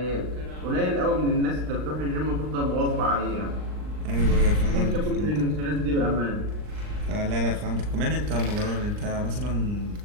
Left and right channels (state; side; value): late; left; 39 ms